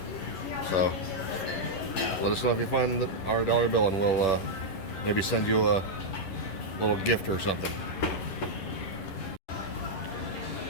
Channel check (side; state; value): right; late; 11 ms